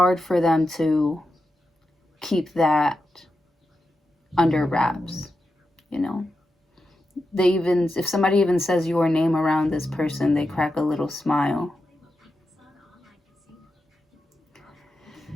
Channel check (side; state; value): both; normal; correlation 0.88